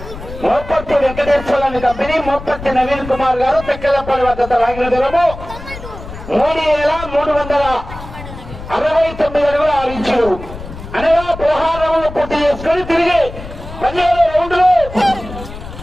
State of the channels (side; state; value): left; noise; rumble, 12 dB below the sound